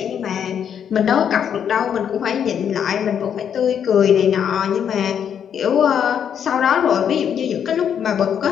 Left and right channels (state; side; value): quieter; right; 8.4 dB